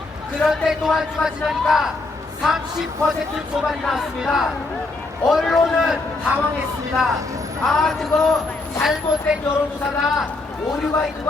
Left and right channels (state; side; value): quieter; right; 3.3 dB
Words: 그런데 또 한 주가 지나니까 30% 초반이 나왔습니다. 언론은 당황했습니다. 아, 그거 잘못된 여론조사다, 오류가 있는